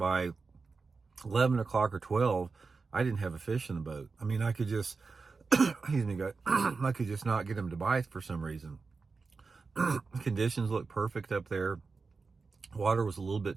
11 o'clock or 12. I didn't have a fish in the boat. I mean, I could just, I could just not get them to bite for some reason. Conditions looked perfect up there. Water was a little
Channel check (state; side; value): quieter; left; 4.4 dB